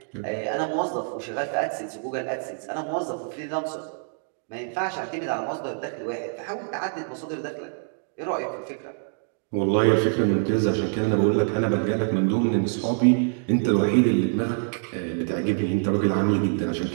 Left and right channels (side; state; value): left; silent; 61 dB below the other